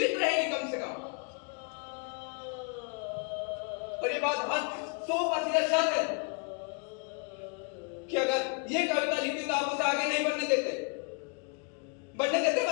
रहेगी कम से कम। और ये बात 100% सच है कि अगर ये कविता लिखी तो आप उसे आगे नहीं बढ़ने देते।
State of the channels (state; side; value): quieter; right; 38.5 dB